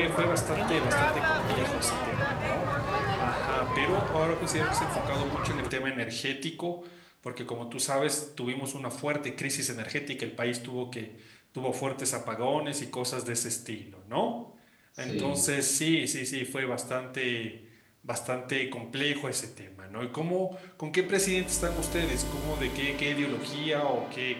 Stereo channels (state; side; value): identical; both; correlation 1.00